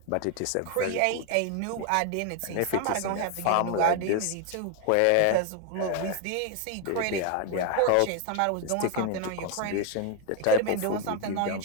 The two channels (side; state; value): both; different; correlation 0.01